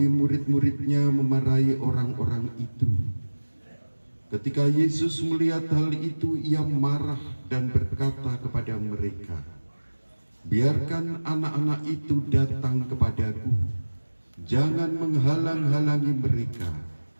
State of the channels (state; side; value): inverted; both; correlation -1.00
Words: murid-muridnya memarahi orang-orang itu. Ketika Yesus melihat hal itu, ia marah dan berkata kepada mereka, "Biarkan anak-anak itu datang kepadaku, jangan menghalang-halangi mereka,